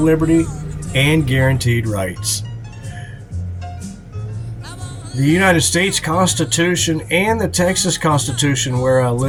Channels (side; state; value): both; identical; correlation 1.00